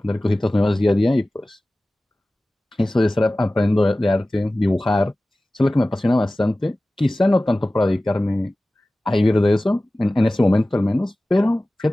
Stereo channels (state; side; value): normal; both; correlation 0.97